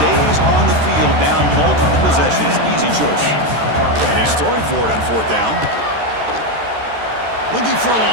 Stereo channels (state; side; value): late; left; 13 ms